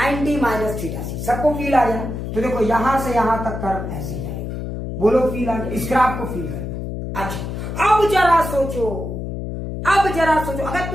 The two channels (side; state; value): left; noise; hum, 5 dB below the sound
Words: माइनस थीटा सी सबको फील आ गया। तो देखो यहां से यहां तक कर्व ऐसे जाएगा। बोलो फील आ गया? इस ग्राफ को फील करना। अच्छा अब जरा सोचो, अगर